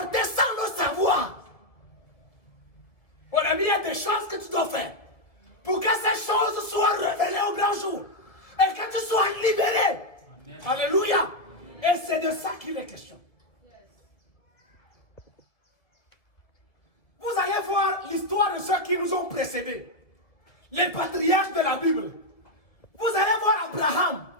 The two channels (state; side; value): late; right; 1.9 ms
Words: sans le savoir. Mon ami, il y a des choses que tu dois faire pour que ces choses soient révélées au grand jour et que tu sois libéré. Amen. Alléluia. Et c'est de ça qu'il est question. Vous allez voir l'histoire de ceux qui nous ont précédés. Les patriarches de la Bible. Vous allez voir Abraham.